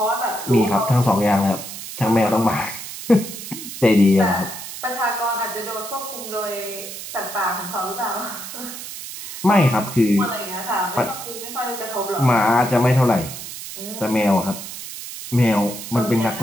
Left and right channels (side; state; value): right; noise; hiss, 10 dB below the sound